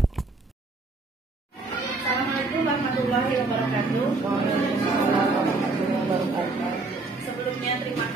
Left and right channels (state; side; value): quieter; left; 3.5 dB